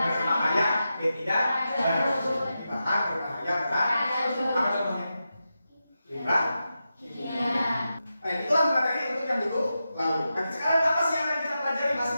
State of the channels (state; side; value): inverted; both; correlation -0.90